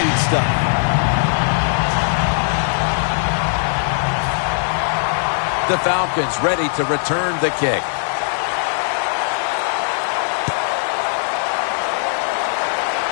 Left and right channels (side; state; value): right; silent; digital silence